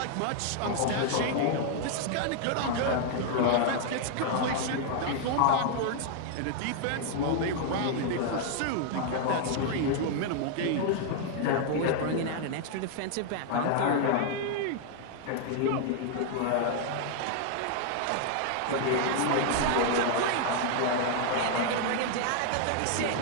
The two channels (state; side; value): different; both; correlation 0.00